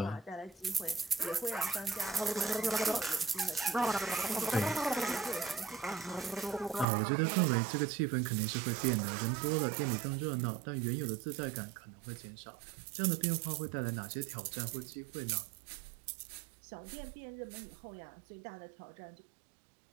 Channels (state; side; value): drops out; left; at 6.9 s